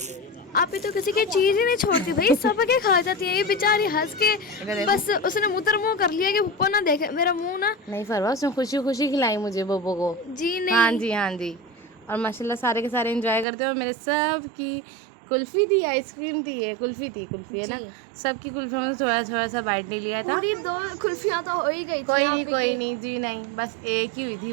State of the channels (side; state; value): left; drops out; at 13.5 s